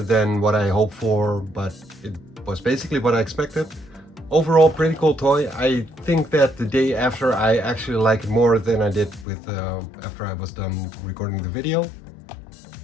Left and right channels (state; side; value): drops out; right; at 9.2 s